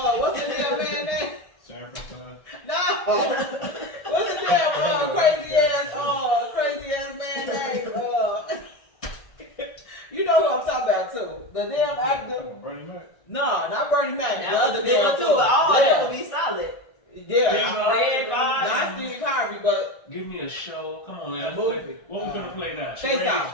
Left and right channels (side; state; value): right; late; 1.6 ms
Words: what's the damn man name? Sanford son? No. What's the damn crazy ass man name? You know who I'm talking about too. The damn actor. Come on, Bernie Mac. No, not Bernie Mac. That The was other a good one damn too, too. but all of Yeah. them would be solid. Yeah. Red Bars. Not Steve Harvey, but Give me a show. Come on, A man. movie. What we gonna play now? Face Charades?